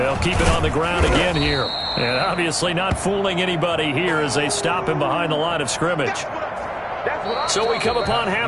keep it on the ground again here. And obviously not fooling anybody here as they stop him behind the line of scrimmage. So we come upon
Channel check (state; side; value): identical; both; correlation 1.00